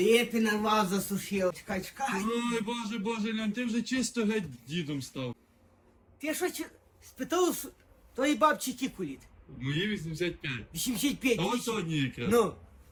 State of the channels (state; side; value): identical; both; correlation 1.00